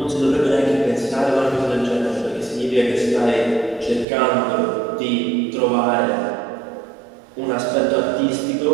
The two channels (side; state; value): left; drops out; at 4.0 s